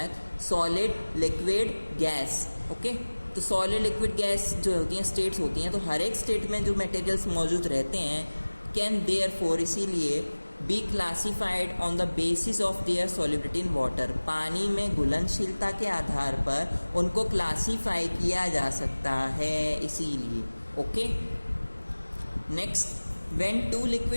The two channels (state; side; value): inverted; both; correlation -1.00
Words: सॉलिड, लिक्विड, गैस। ओके, तो सॉलिड, लिक्विड, गैस जो होती हैं स्टेट्स होती हैं, तो हर एक स्टेट में जो मटेरियल्स मौजूद रहते हैं कैन देयरफॉर, इसीलिए B classified on the basis of there solubility in water, पानी में घुलनशीलता के आधार पर उनको क्लासीफाई किया जा सकता है, इसीलिए। Okay, next, when two